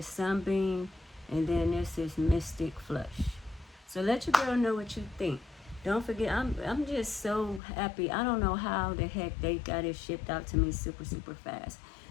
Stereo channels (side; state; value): right; drops out; at 7.6 s